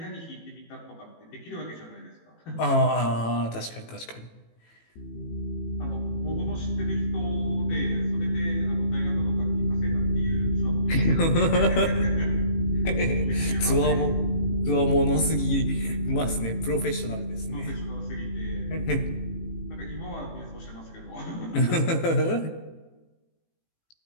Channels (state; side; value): late; right; 18 ms